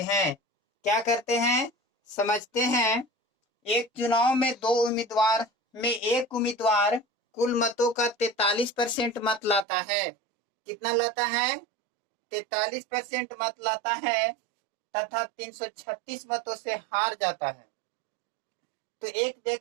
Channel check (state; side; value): drops out; left; at 9.7 s